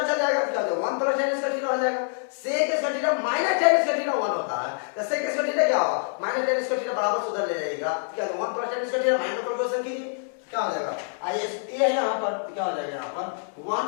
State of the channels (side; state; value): right; silent; digital silence